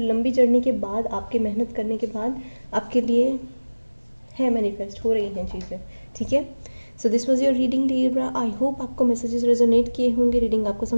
जर्नी के बाद, आपके मेहनत करने के बाद आपके लिए है मैनिफेस्ट हो रही हैं चीज़ें, ठीक है। So this was your reading Libra. आई होप आपको मैसेजेस रेजोनेट किए होंगे, रीडिंग आपको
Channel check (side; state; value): both; inverted; correlation -1.00